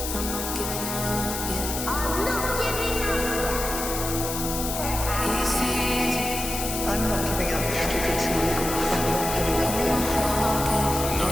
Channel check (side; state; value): left; noise; hiss, 5 dB below the sound